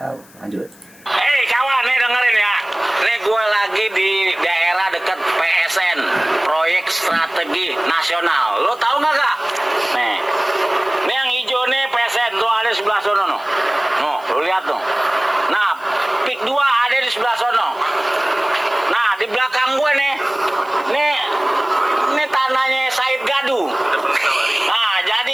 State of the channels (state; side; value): noise; left; hiss, 25 dB below the sound